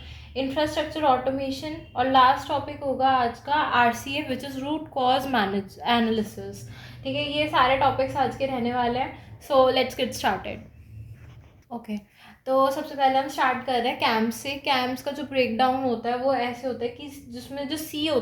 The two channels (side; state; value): both; identical; correlation 1.00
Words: इंफ्रास्ट्रक्चर ऑटोमेशन, और लास्ट टॉपिक होगा आज का RCA, which is root cause manage analysis. ठीक है, ये सारे टॉपिक्स आज के रहने वाले हैं। So let's get started. Okay, तो सबसे पहले हम स्टार्ट कर रहे हैं कैम्प से। कैम्प्स का जो ब्रेक डाउन होता है वो ऐसे होता है कि जिसमें जो सी